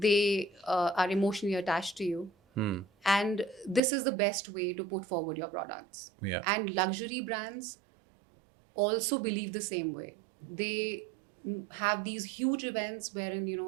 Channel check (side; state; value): left; drops out; at 3.8 s